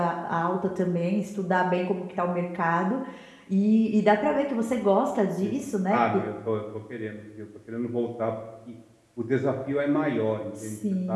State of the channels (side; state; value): both; identical; correlation 1.00